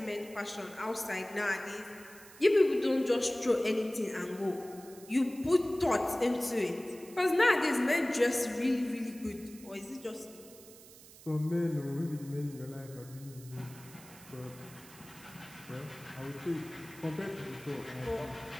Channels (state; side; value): noise; right; hiss, 20 dB below the sound